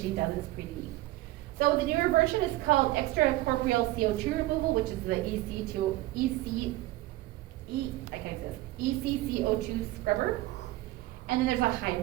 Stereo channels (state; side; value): quieter; left; 17.5 dB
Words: does it. It's pretty neat. So the newer version is called extracorporeal CO2 removal, which is the ECCO2 scrubber. And then there's a